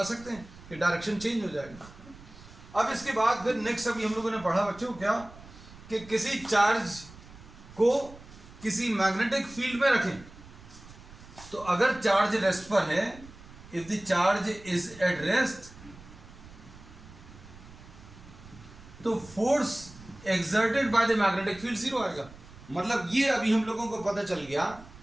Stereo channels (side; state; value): right; noise; rumble, 19 dB below the sound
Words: सकते हैं कि डायरेक्शन चेंज हो जाएगा। अब इसके बाद फिर नेक्स्ट अभी हम लोगों ने पढ़ा बच्चों क्या कि किसी चार्ज को किसी मैग्नेटिक फील्ड में रखें तो अगर चार्ज रेस्ट पर है, if the charge is at rest, तो force exerted by the magnetic field zero आएगा। मतलब ये अभी हम लोगों को पता चल गया